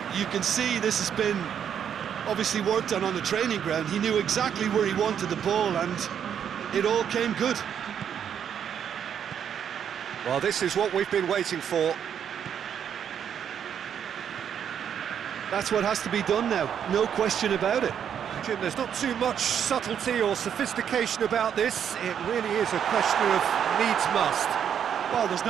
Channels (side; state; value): left; quieter; 8.5 dB